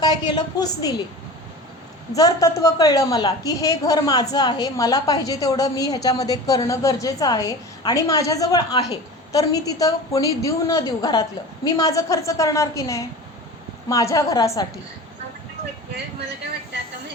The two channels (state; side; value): normal; both; correlation 0.34